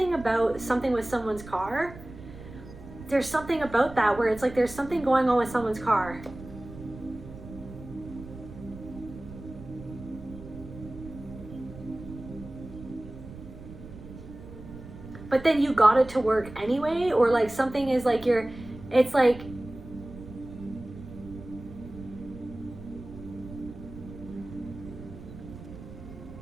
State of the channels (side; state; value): right; noise; rumble, 15 dB below the sound